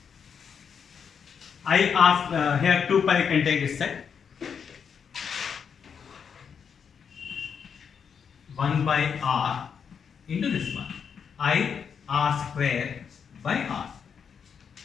I r here 2 pi can take this side. 1 by r into this one. I r square by r.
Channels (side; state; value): right; quieter; 6.9 dB